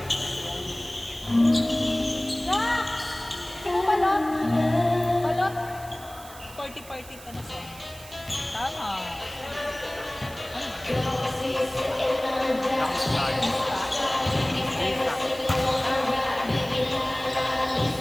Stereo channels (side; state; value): right; noise; hiss, 18 dB below the sound